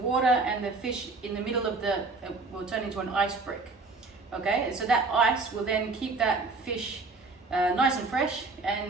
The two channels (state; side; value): quieter; left; 3.7 dB